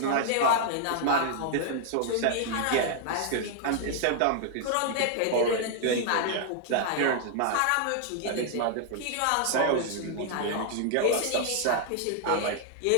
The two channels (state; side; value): different; both; correlation 0.00